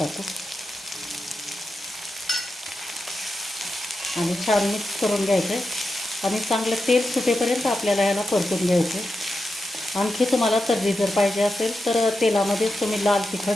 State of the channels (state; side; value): normal; both; correlation 0.89